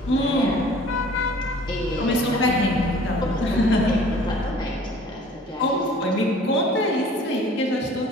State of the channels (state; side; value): normal; both; correlation 0.50